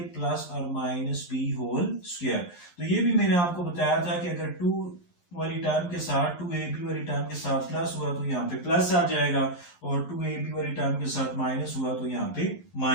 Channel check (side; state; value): right; late; 11 ms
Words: प्लस और माइनस b होल स्क्वायर। तो ये भी मैंने आपको बताया था कि अगर 2 वाली टर्म के साथ 2ab वाली टर्म के साथ प्लस हुआ तो यहाँ पे प्लस आ जाएगा और 2ab वाली टर्म के साथ माइनस हुआ तो यहाँ पे